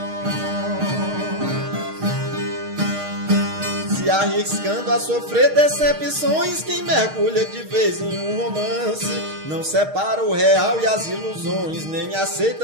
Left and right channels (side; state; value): left; late; 6.5 ms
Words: Se arriscando a sofrer decepções, quem mergulha de vez em um romance não separa o real e as ilusões, nem